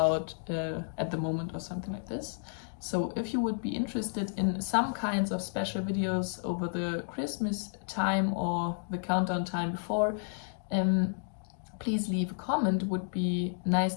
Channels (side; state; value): right; silent; digital silence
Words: at the moment, or something like this. So if you would be interested in some kinds of special videos over the Christmas time or the countdown time before, please leave a comment. Would be nice